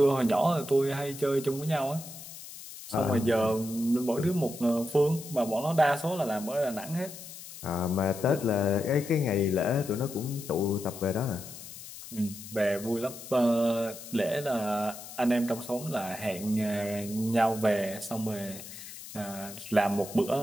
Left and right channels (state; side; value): noise; left; hiss, 13 dB below the sound